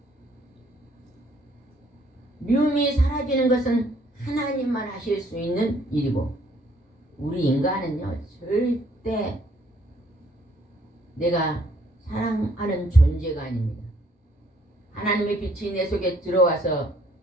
미움이 사라지는 것은 하나님만 하실 수 있는 일이고, 우리 인간은요 절대 내가 사랑하는 존재가 아닙니다. 하나님의 빛이 내 속에 들어와서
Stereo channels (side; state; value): both; normal; correlation 0.64